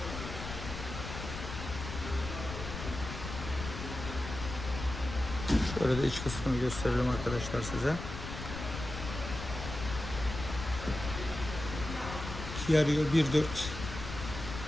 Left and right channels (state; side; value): noise; left; rumble, 7 dB below the sound